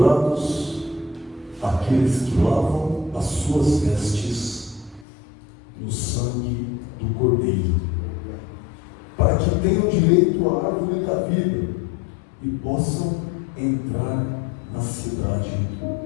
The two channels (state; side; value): drops out; right; at 5.1 s